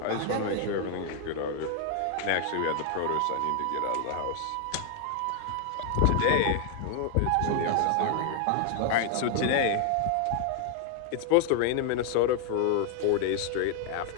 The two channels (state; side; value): different; both; correlation 0.00